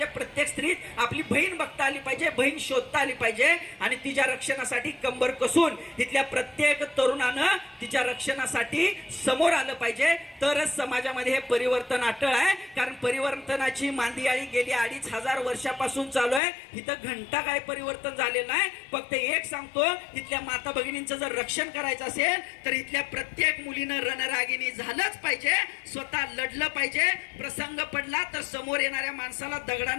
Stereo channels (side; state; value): right; drops out; at 16.4 s